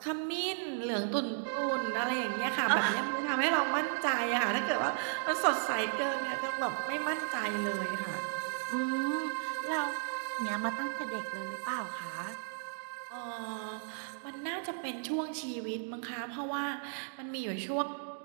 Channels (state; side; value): silent; left; digital silence